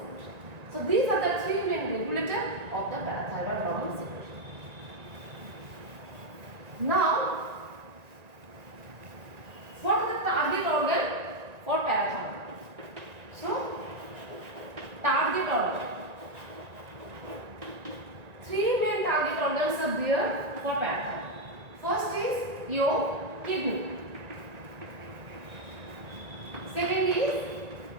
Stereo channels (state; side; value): late; left; 1.9 ms